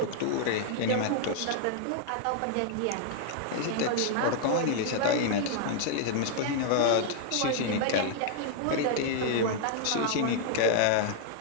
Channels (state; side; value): different; both; correlation -0.01